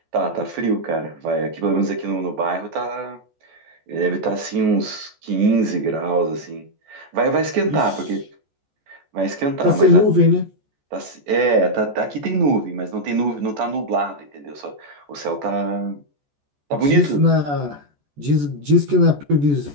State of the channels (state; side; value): late; left; 14 ms